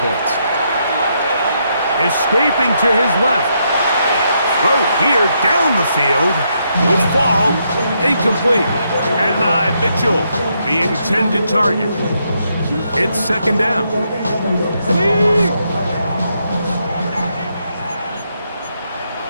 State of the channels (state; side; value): inverted; both; correlation -0.78